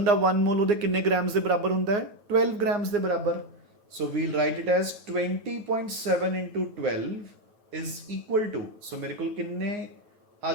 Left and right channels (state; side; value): late; left; 9.2 ms